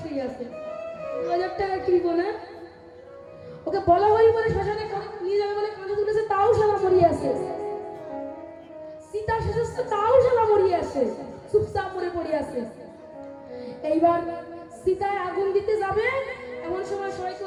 শুয়ে আছে। 2000 টাকা কিনবো না, ওকে বলা হরি বলে শ্মশানে নিয়ে যাবে বলে কাঁধে তুলেছে, তাও শালা মরিয়ে আছে। সীতা শেষ তাও শালা মরিয়ে আছে, চুপচাপ মরে পড়ে আছে। এইবার সীতায় আগুন দিতে যাবে, এমন সময় সবাই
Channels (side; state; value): both; identical; correlation 1.00